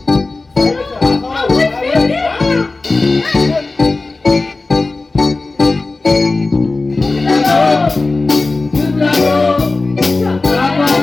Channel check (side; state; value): right; quieter; 3.4 dB